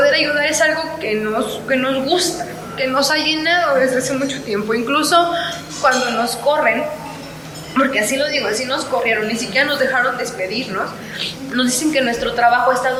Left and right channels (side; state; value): both; identical; correlation 1.00